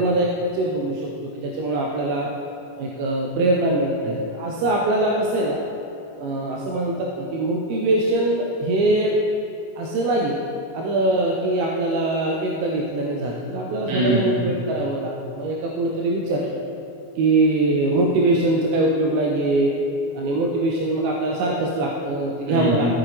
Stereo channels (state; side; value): late; left; 21 ms